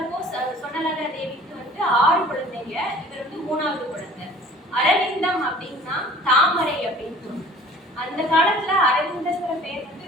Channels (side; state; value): both; normal; correlation 0.48